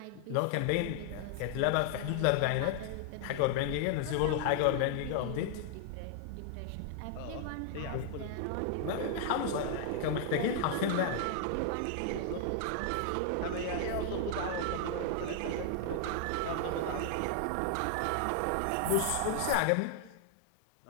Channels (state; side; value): different; both; correlation 0.00